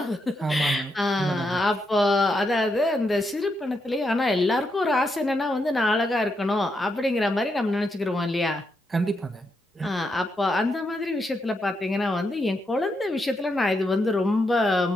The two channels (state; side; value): normal; both; correlation 0.82